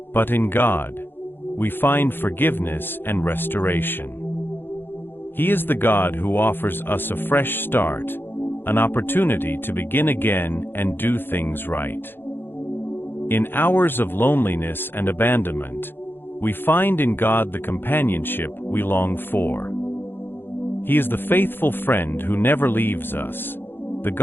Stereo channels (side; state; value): right; late; 0.10 ms